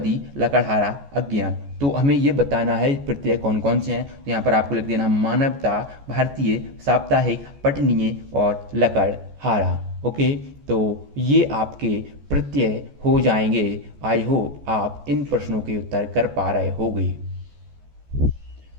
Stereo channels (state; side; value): late; left; 14 ms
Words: लकड़हारा, अज्ञान। तो हमें ये बताना है प्रत्यय कौन कौन से हैं। तो यहाँ पर आपको लिख देना मानवता, भारतीय, साप्ताहिक, पठनीय और लकड़हारा। ओके, तो ये आपके प्रत्यय हो जाएंगे। आई होप आप इन प्रश्नों के उत्तर कर पा रहे होंगे।